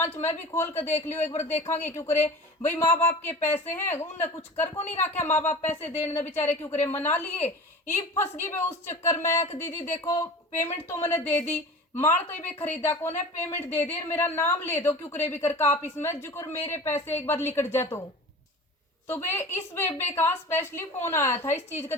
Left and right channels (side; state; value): both; normal; correlation 0.37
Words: में भी खोल कर देख लियो एक बार, देखांगे क्यों करे। भाई माँ बाप के पैसे हैं, उनने कुछ कर को नहीं रखा, माँ बाप पैसे देने बेचारे क्यों करे मना लिए। ये फंस गई भाई उस चक्कर में, दीदी देखो पेमेंट तो मैंने दे दी, माल तो ये खरीदा कौन है, पेमेंट दे दे, मेरा नाम ले दो क्यों करे भी करके आप इसमें जुकर मेरे पैसे एक बार लिकट जा। तो वे इस बेबे का स्पेशली फोन आया था इस चीज के